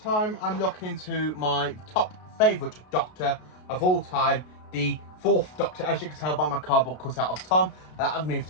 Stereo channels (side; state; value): right; late; 33 ms